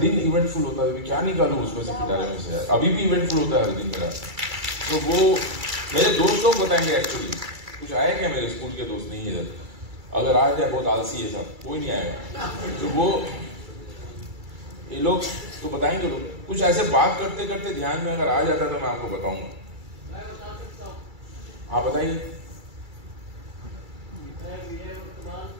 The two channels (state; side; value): late; left; 2.3 ms